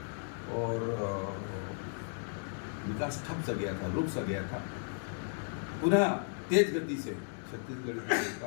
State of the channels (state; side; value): silent; right; digital silence